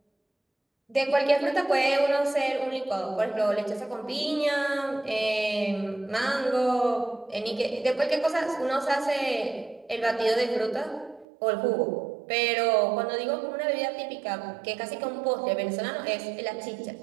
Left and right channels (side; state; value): left; drops out; at 11.2 s